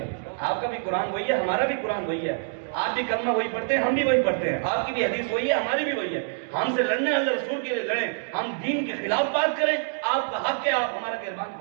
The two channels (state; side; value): silent; left; digital silence